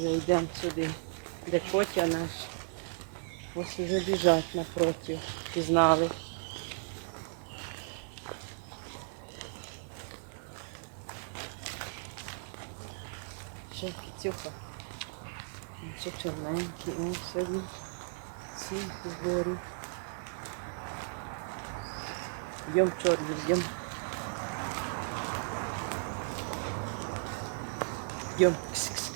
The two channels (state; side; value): silent; left; 54 dB below the other